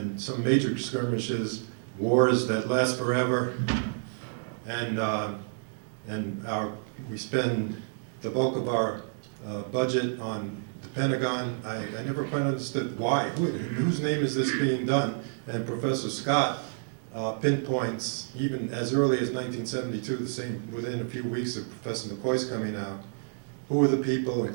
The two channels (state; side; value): silent; left; digital silence